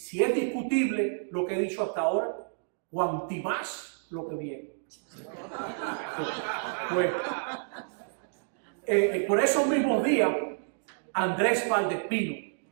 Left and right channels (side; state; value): left; silent; digital silence